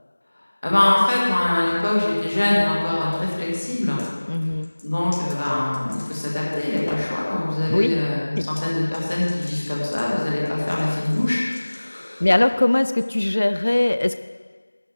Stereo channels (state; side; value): inverted; both; correlation -1.00